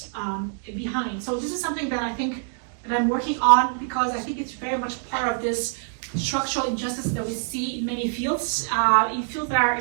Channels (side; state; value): left; silent; digital silence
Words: behind. So this is something that I think that I'm working on because I think it's very much part of this structural injustice that we see in many fields, in fields that are